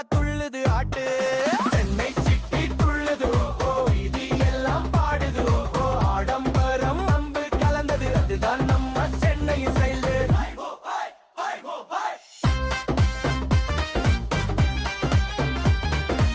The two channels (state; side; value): identical; both; correlation 1.00